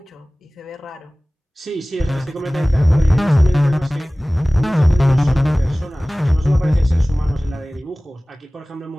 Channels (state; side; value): normal; both; correlation 0.98